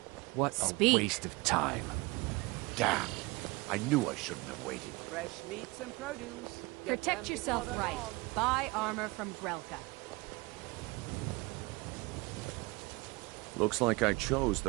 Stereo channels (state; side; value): quieter; left; 24.1 dB